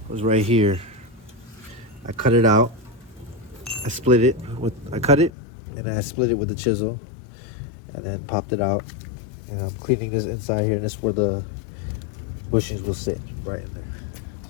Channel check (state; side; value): drops out; right; at 5.3 s